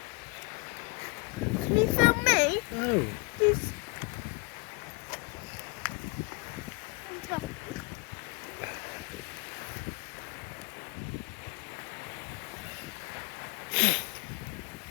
Can you film me? No. Please.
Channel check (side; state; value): right; quieter; 27.9 dB